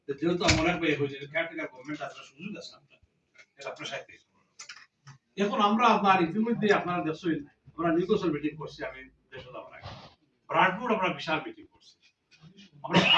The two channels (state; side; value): identical; both; correlation 1.00